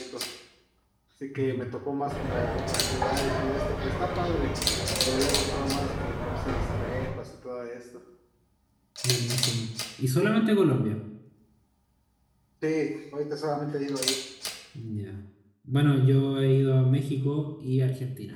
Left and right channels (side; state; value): both; identical; correlation 1.00